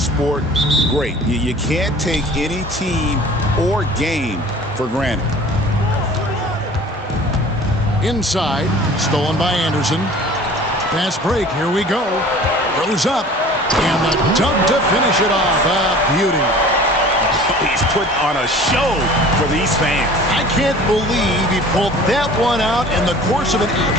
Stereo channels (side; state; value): both; normal; correlation 0.45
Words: great. You can't take any team or game for granted. Inside, stolen by Anderson. Fast break, here we go. Goes up, and the dunk to finish it off. A beauty. He's put on a show for these fans. I can't believe he pulled that one out in the course of an